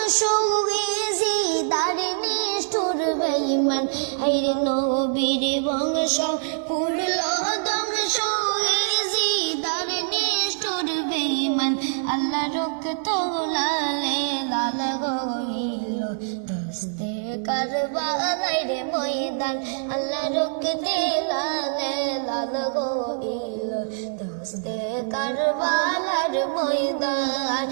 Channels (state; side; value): silent; left; digital silence